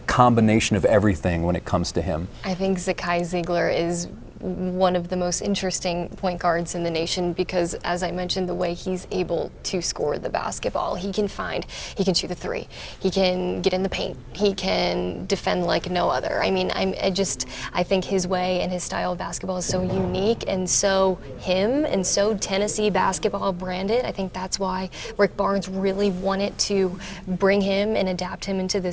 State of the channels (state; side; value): identical; both; correlation 1.00